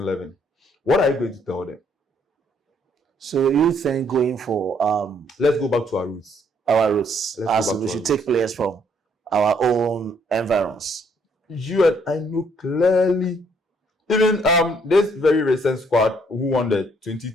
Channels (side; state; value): both; normal; correlation 0.67